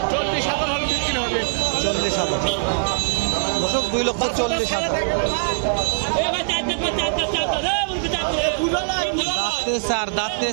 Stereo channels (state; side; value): silent; left; digital silence